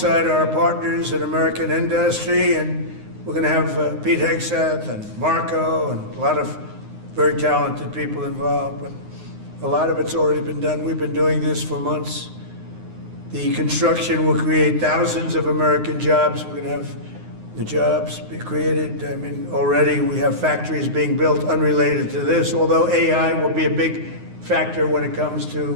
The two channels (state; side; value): late; left; 9.6 ms